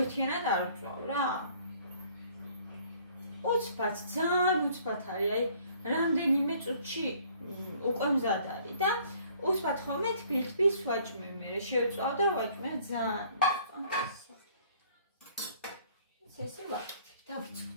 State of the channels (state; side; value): inverted; both; correlation -0.58